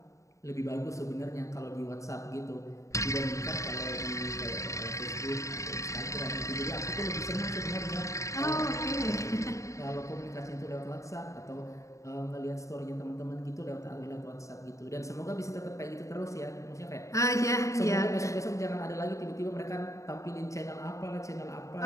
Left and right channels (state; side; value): late; right; 0.15 ms